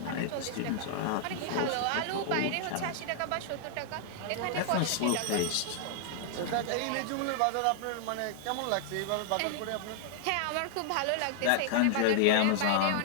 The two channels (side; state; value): both; different; correlation -0.01